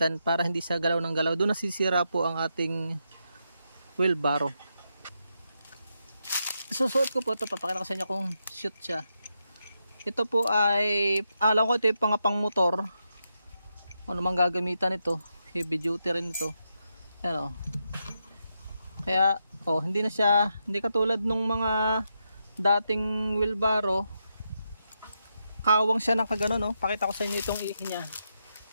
para hindi siya galaw ng galaw. Doon nasisira po ang ating wheelbarrow. Susuot ko po ito, papakita ko sa inyo kung shoot siya. Ito po ay, alam ko ito yung pang motor. Ano mang gagamitan ito, heavy duty rin ito. Ayan Kaya hindi katulad nung mga dating wheelbarrow. Kawang siya ng kagano Pakita ko sa inyo itong ihi niya.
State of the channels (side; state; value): both; inverted; correlation -0.84